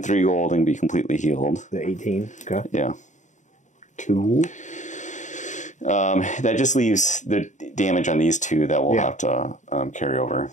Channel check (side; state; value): right; late; 0.35 ms